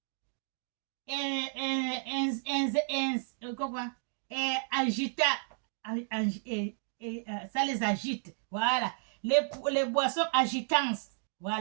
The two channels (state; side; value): silent; left; 56 dB below the other